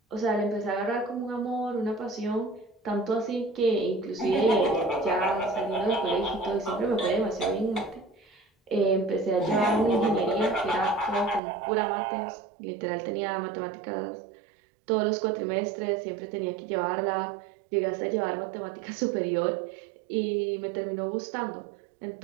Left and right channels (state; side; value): drops out; left; at 11.4 s